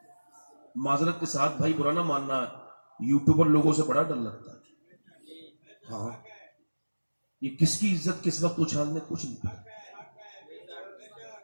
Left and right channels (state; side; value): inverted; both; correlation -1.00